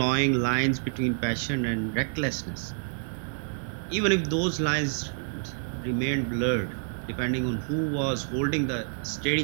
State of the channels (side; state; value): left; silent; digital silence